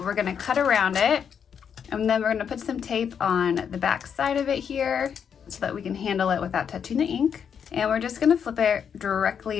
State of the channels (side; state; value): right; quieter; 7.5 dB